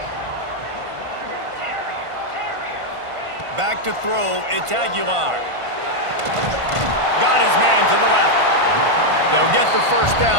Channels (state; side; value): late; left; 1.5 ms